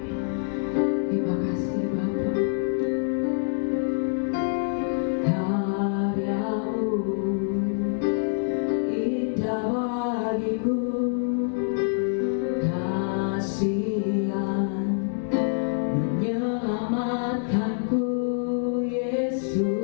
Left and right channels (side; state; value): right; silent; digital silence